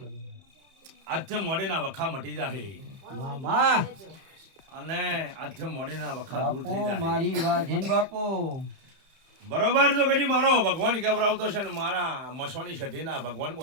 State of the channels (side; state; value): left; late; 31 ms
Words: આજથી મોડેના વખા મટી જાહે મામા અને આજથી મોડેના વખા દૂર થઈ બાપુ જાય મારી વાત છે ને બાપુ બરોબર જો કદી મારો ભગવાન કેવરાવતો છે ને મારા મસવાની સધીના ભગવાન